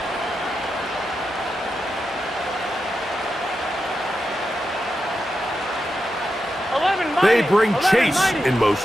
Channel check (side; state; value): both; normal; correlation 0.88